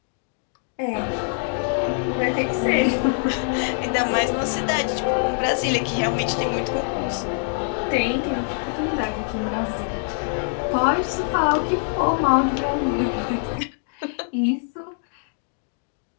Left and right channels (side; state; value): right; silent; 58 dB below the other